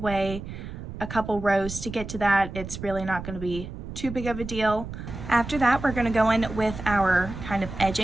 a couple rows to get to that. It's really not going to be too big of a deal. After that, we're going to go in with our kind of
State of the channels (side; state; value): right; noise; rumble, 9 dB below the sound